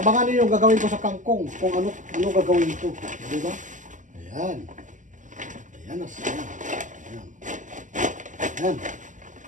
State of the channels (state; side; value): late; left; 0.37 ms